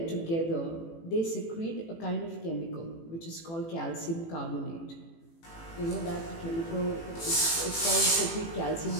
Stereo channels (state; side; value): late; right; 18 ms